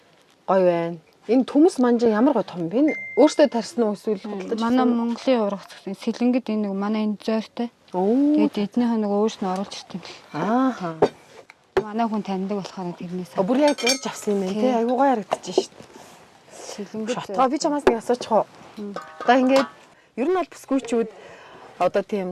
гоё байна. Энэ төмс манжаа ямар гоё том бэ? Өөртөө тарьсан уу эсвэл худалдаж? Манай Монголын ургац гэсэн сэлэнгэд энэ нэг манай энэ зөөртэй. Тэгээд эднийх нэг өөрснөө оруулж ирсэн. Ааха. Манай хүн таньдаг болохоор тэрнээс. Бүр яг зорж авсан юм байна тий. Айгуу гоё харагдаж шít. Сэлэнгэд. Шотгоо би чамаас нэг асуучих уу? Одоо ингээд ер нь бол бүсгүйчүүд одоо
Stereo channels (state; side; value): identical; both; correlation 1.00